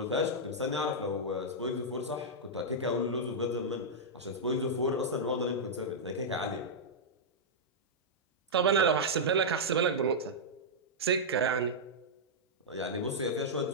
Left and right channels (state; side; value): normal; both; correlation -0.08